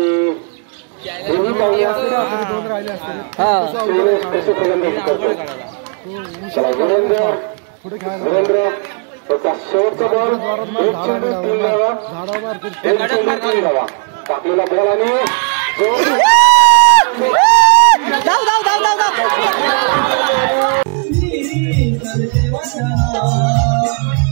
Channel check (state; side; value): quieter; left; 38.6 dB